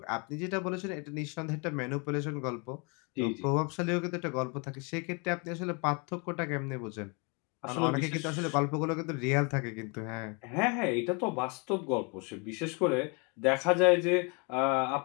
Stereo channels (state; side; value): quieter; right; 32.9 dB